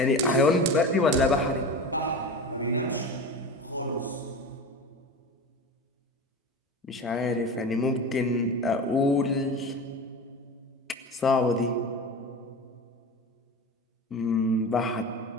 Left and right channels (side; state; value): both; normal; correlation 0.30